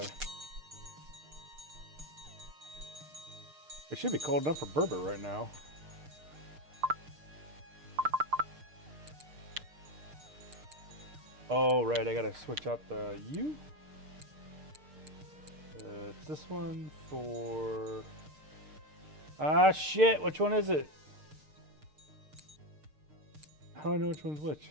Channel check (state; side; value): late; left; 6.6 ms